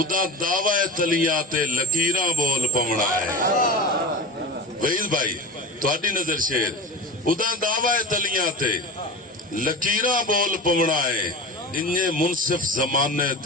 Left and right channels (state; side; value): normal; both; correlation 0.30